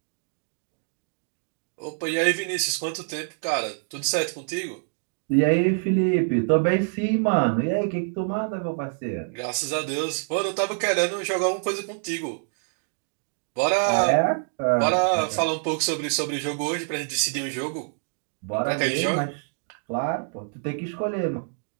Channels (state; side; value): silent; left; digital silence